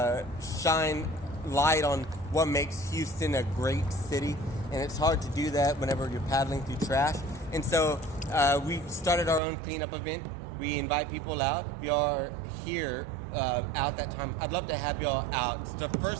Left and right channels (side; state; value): left; drops out; at 9.4 s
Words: shine light on what makes Houston a great city. and it's hard to do that whenever you're paddling through trash. And so we started our own cleanup event. We invite people out. If y'all are here out that time, I'd love to have y'all out. It's the